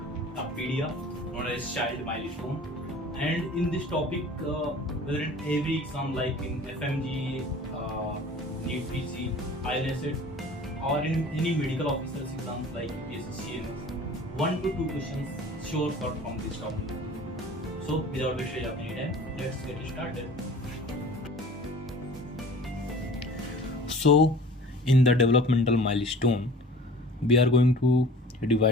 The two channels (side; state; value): both; normal; correlation 0.44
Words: of PDF known as child milestone. And in this topic, whether in every exam like in FMG, NEET PC, ILSET, or in any medical officers exams like UPSC, CMS, 1 to 2 questions sure cut from this topic. So, without wasting any time, let's get started. So, in the developmental milestone, we are going to